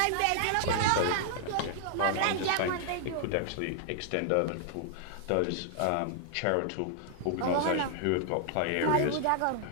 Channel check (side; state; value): both; different; correlation -0.01